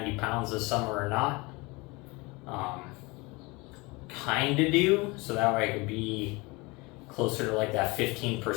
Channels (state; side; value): quieter; right; 25.1 dB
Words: pounds this summer or not. Kind of do, so that way I could be closer to like that